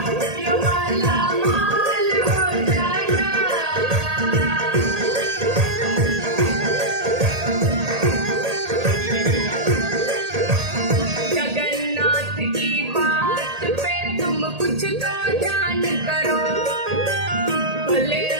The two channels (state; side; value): late; left; 1.8 ms